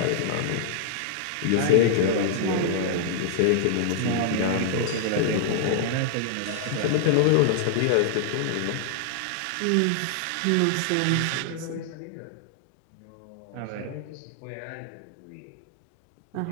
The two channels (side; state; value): both; different; correlation -0.01